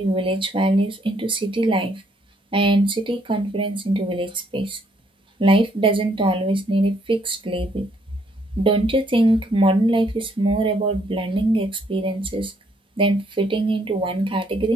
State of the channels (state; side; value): normal; both; correlation 0.69